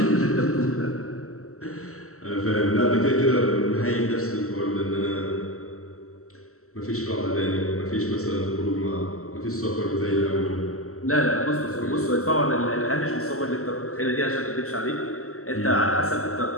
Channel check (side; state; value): right; late; 0.63 ms